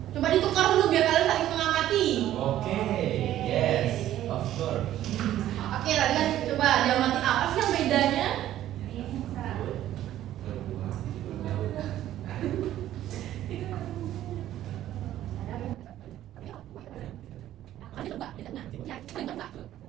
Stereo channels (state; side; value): quieter; left; 12.8 dB